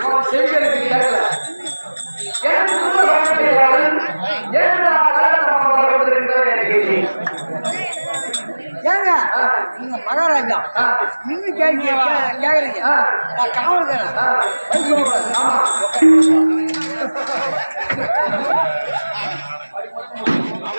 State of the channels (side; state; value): both; inverted; correlation -1.00